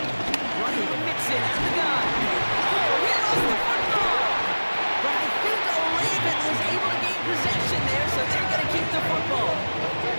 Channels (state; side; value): inverted; both; correlation -1.00